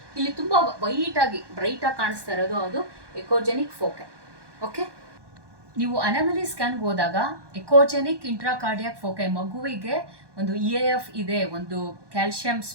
ಇಲ್ಲಿ ತುಂಬಾ ಬ್ರೈಟ್ ಆಗಿ ಕಾಣಿಸ್ತಾ ಇರೋದು ಅದು ಎಕೋಜೆನಿಕ್ ಫೋಕೈ. ಓಕೆ, ನೀವು ಅನಾಮಲಿ ಸ್ಕ್ಯಾನ್ಗೆ ಹೋದಾಗ ಎಕೋಜೆನಿಕ್ ಇಂಟ್ರಾಕಾರ್ಡಿಯಾಕ್ ಫೋಕೈ, ಮಗುವಿಗೆ ಒಂದು EAF ಇದೆ, ಒಂದು ಕ್ಯಾಲ್ಸಿಯಂ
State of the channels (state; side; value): late; left; 1.2 ms